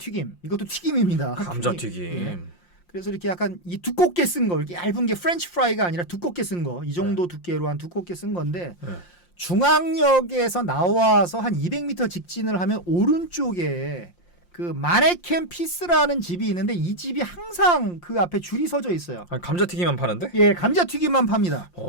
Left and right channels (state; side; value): late; right; 5.7 ms